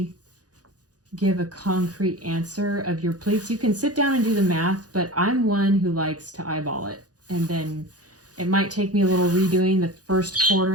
give a concrete answer of your pleats. You can sit down and do the math, but I'm one who likes to eyeball it. And then it might take me a little redoing the first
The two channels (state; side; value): late; left; 0.68 ms